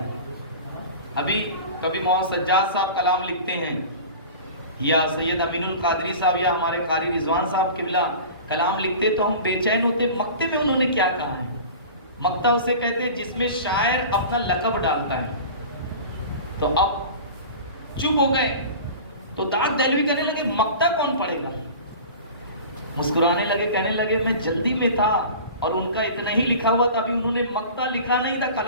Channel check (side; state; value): both; inverted; correlation -0.37